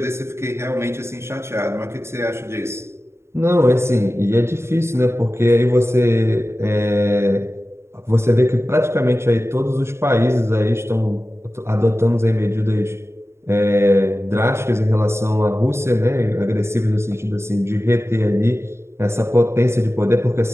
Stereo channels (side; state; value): left; late; 0.13 ms